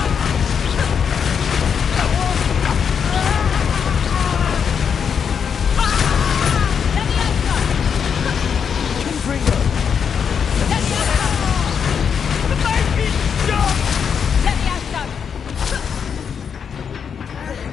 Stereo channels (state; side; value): quieter; right; 7.0 dB